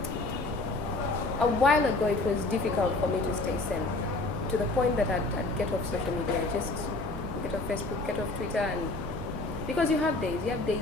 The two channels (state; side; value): quieter; right; 3.1 dB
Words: A while ago it was difficult for me to stay sane, to the point that I'd get off social media. I just get off Facebook, get off Twitter, and because you have days